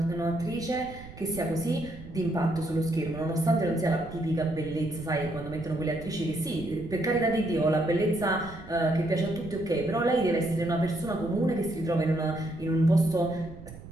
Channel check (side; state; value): right; noise; rumble, 15 dB below the sound